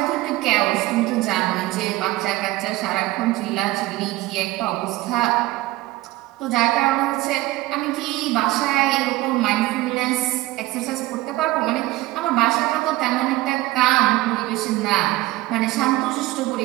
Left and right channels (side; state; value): left; quieter; 18.1 dB